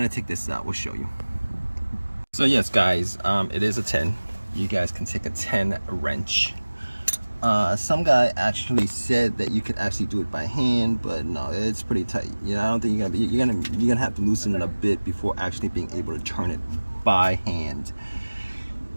I take this out, we'll show you. So yes guys, it is a 10. You guys can take a 10 wrench. Some guy actually said that you could actually do it by hand, but no, it's pretty tight. You know, I don't think you're gonna have to loosen it a bit before actually being able to turn it by hand.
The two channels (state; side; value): inverted; both; correlation -1.00